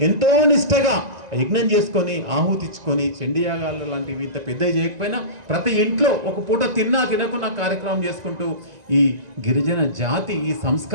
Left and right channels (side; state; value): left; late; 1.9 ms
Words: ఎంతో నిష్టగా యజ్ఞం చేసుకొని ఆహుతిచ్చుకొని చండీయాగాలు లాంటివి ఇంత పెద్ద చేయకపోయినా ప్రతి ఇంట్లో ఒక పూట తిన్నా తినకున్న కార్యక్రమం చేసుకుంటూ ఈ గిరిజన జాతి ఈ